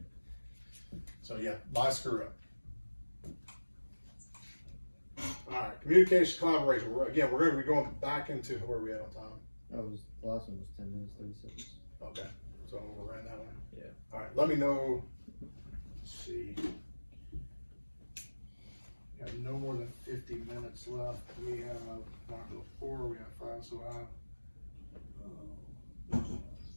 So yeah, my screw up. All right, communication, collaboration. We're going to be going back into where we at on time. The last one was 10 minutes, 30 seconds. Okay, so we're running that one. Yeah. All right, let me know. Let's see. We have no more than 50 minutes left. We have module 4, we have 5, so I have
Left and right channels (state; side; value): inverted; both; correlation -1.00